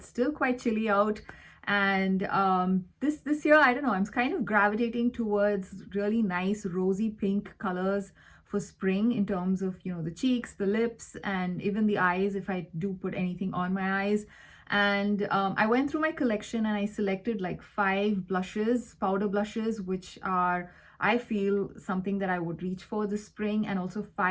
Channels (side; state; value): both; identical; correlation 1.00